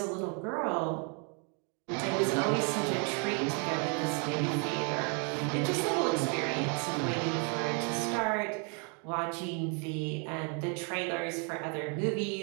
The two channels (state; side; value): quieter; left; 37.1 dB